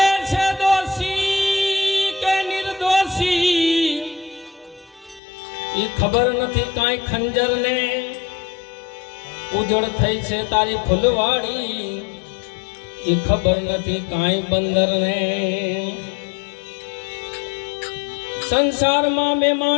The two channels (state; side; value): drops out; right; at 5.2 s